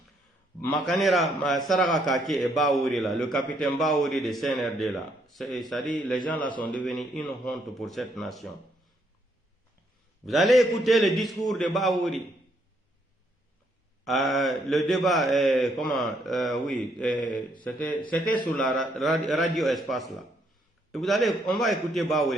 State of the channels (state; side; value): normal; both; correlation 0.72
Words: Makanera Saraka Kake et Baouri là, le capitaine Baouri de CNRD là. C'est-à-dire, les gens là sont devenus une honte pour cette nation. Vous allez écouter le discours de Baouri. Le débat, c'était sur la radio Espace là. Et on va écouter